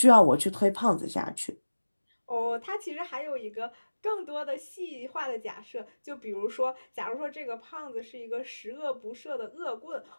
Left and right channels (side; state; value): both; inverted; correlation -1.00